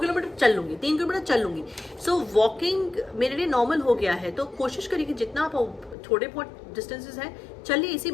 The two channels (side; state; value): right; drops out; at 6.0 s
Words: चल लूंगी, 3 किलोमीटर चल लूंगी। सो वॉकिंग मेरे लिए नॉर्मल हो गया है। तो कोशिश करिए कि जितना आप थोड़े बहुत डिस्टेंसेस हैं चलिए, इसी